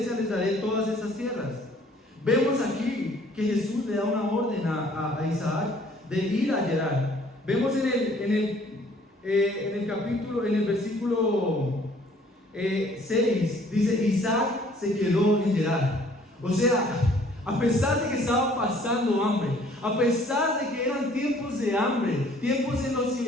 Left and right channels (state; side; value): normal; both; correlation 0.58